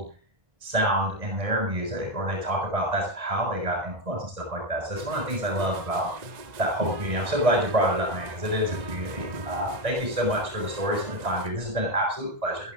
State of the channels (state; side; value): late; left; 1.9 ms